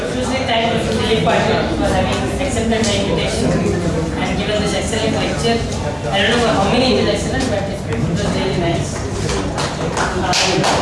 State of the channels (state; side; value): identical; both; correlation 1.00